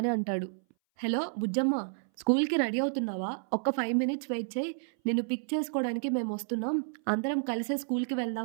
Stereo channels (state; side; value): silent; left; 57 dB below the other